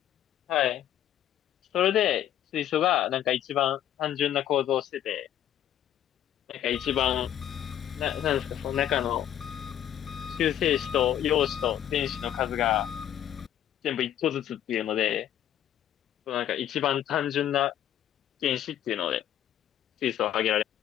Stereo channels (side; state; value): right; quieter; 10.9 dB